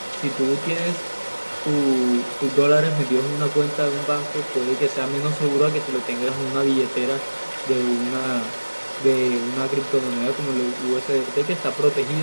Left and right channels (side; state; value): both; inverted; correlation -1.00